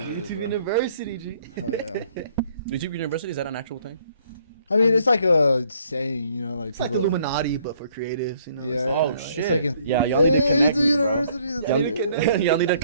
YouTube University, G. Oh, yeah. YouTube University, is that an actual thing? I mean, it's like a saying, you know, like it's like the Illuminati, but for creatives, you know. Yeah. Oh, it's shit. It's like yeah, y'all need to connect me, bro. University. Y'all need to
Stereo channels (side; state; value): both; inverted; correlation -0.64